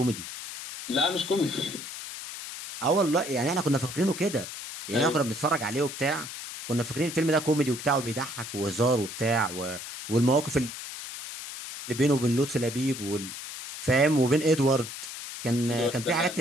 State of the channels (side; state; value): left; noise; hiss, 9 dB below the sound